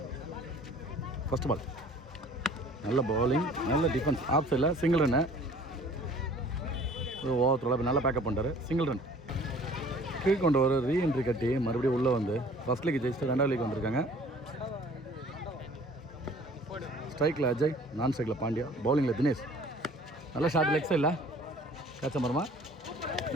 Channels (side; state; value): both; normal; correlation 0.51